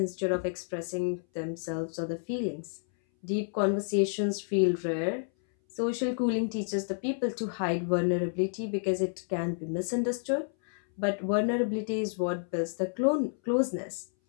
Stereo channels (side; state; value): right; silent; 58 dB below the other